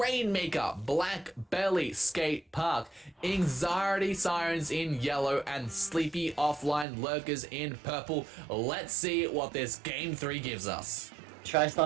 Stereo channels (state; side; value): drops out; left; at 6.9 s